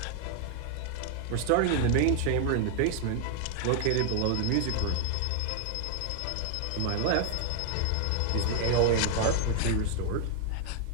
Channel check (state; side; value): different; both; correlation 0.00